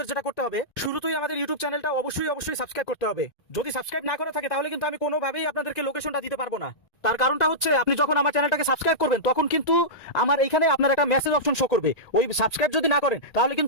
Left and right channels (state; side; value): late; right; 1.9 ms